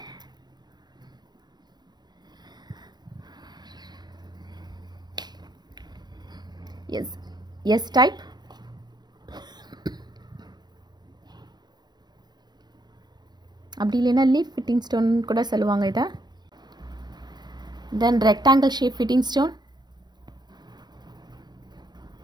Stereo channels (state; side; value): late; left; 0.20 ms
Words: yes type, அப்படி இல்லைன்னா leaf fitting stone கூட சொல்லுவாங்க இதை. Then rectangle shape fitting stone,